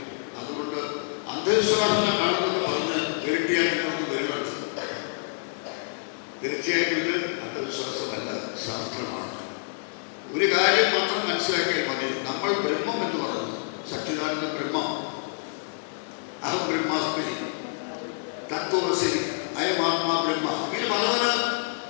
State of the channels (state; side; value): silent; right; digital silence